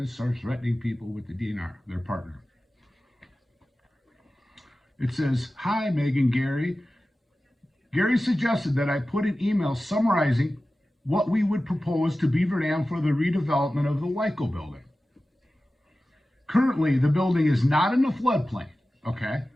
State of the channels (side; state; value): both; normal; correlation 0.95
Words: and start threatening people with the DNR, their partner. It says, hi, Meg and Gary. Gary suggested that I put an email summarizing what we would propose to Beaver Dam for the redevelopment of the Wyco building. Currently, the building is not in the floodplain, okay?